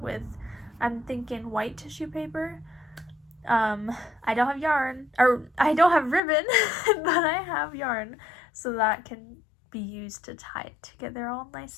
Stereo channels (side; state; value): right; drops out; at 6.2 s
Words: I'm thinking, white tissue paper. I don't have yarn, or I don't have ribbon, but I have yarn, so that can be used to tie it together all